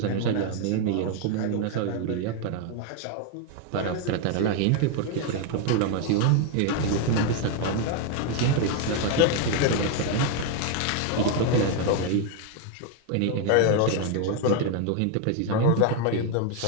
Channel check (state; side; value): different; both; correlation 0.01